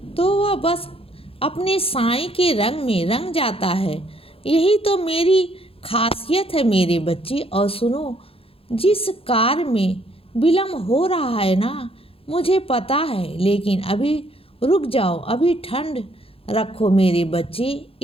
तो वह बस अपने साईं के रंग में रंग जाता है। यही तो मेरी खासियत है मेरे बच्चे। और सुनो, जिस कार्य में विलम्ब हो रहा है ना, मुझे पता है, लेकिन अभी रुक जाओ, अभी ठंड रखो मेरे बच्चे,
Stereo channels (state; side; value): late; right; 0.27 ms